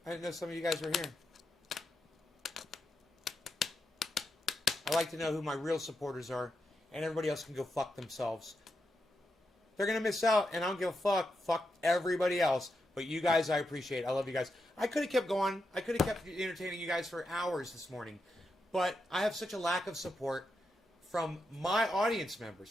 I didn't know some of you guys were here. I like to know who my real supporters are, and everybody else can go fuck themselves. They're going to miss out, and I don't give a fuck. Fuck everybody else. But you guys, I appreciate. I love you guys. I could have kept going. I could have kept entertaining you guys for hours this morning. But I have such a lack of support from my audience members,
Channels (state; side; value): normal; both; correlation 0.85